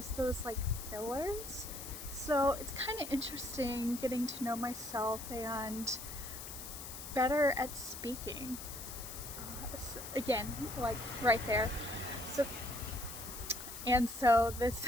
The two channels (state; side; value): noise; left; hiss, 10 dB below the sound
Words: those like fillers. So it's kind of interesting getting to know myself and better at speaking. So again, like right there. So this